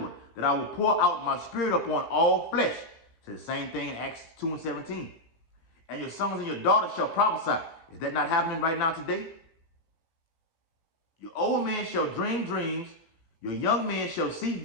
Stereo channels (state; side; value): late; right; 18 ms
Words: that I will pour out my spirit upon all flesh. So the same thing in Acts 2:17. And your sons and your daughters shall prophesy. Is that not happening right now today? Your old men shall dream dreams, your young men shall see